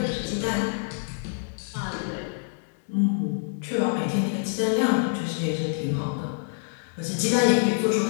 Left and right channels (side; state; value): right; silent; digital silence